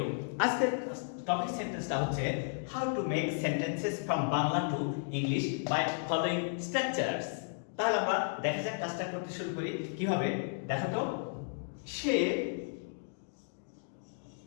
আজকের টপিক সেন্টেন্সটা হচ্ছে how to make sentences from Bangla to English by following structures. তাহলে আমরা দেখা যাক কাজটা করতে শুরু করি কিভাবে। দেখো তো, সে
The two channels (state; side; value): silent; right; digital silence